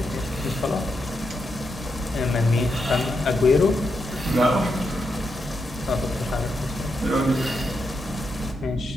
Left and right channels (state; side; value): normal; both; correlation 0.83